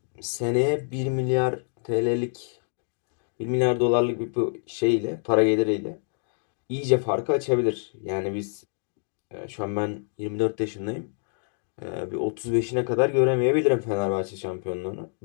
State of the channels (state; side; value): silent; right; digital silence